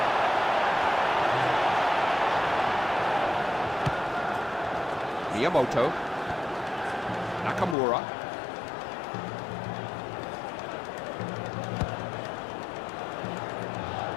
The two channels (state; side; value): drops out; right; at 7.8 s